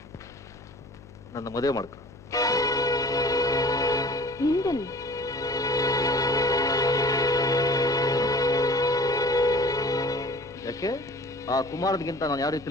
ನನ್ನ ಮದುವೆ ಮಾಡ್ಕೊ. ಹಿಂದೆಲ್ಲಿ? ಯಾಕೆ? ಆ ಕುಮಾರನಿಗಿಂತ ನಾನು ಯಾವ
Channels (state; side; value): noise; left; hum, 20 dB below the sound